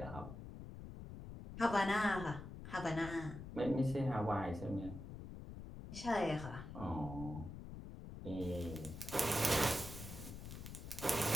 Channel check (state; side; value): noise; left; rumble, 10 dB below the sound